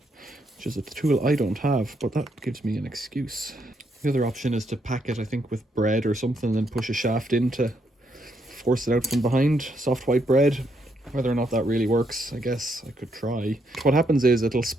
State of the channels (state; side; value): normal; both; correlation 0.76